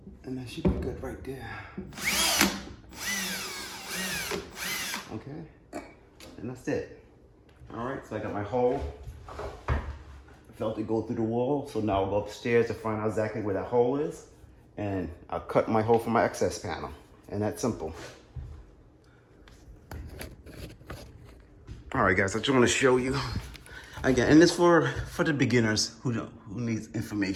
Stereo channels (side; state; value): both; identical; correlation 1.00